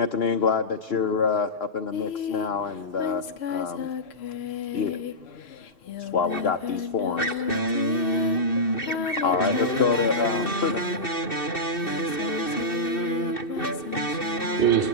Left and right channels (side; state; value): right; late; 2.6 ms